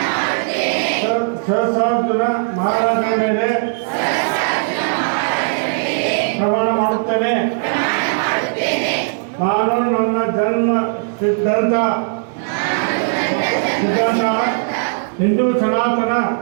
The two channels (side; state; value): left; silent; digital silence